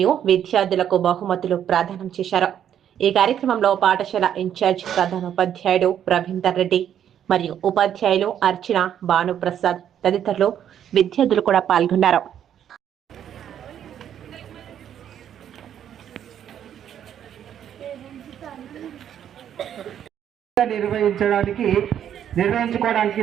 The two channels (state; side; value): quieter; left; 9.7 dB